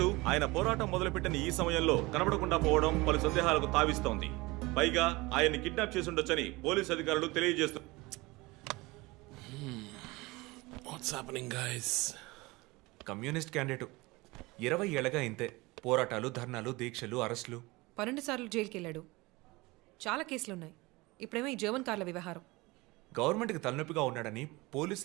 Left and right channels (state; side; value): quieter; left; 22.6 dB